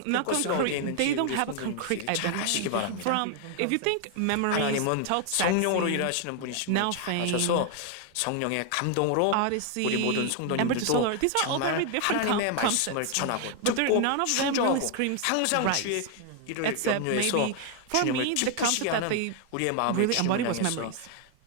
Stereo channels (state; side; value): different; both; correlation 0.00